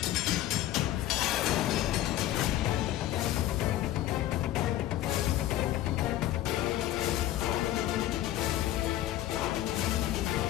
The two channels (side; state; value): right; quieter; 13.7 dB